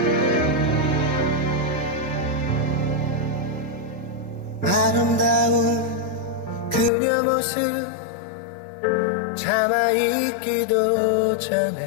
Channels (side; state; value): right; drops out; at 6.9 s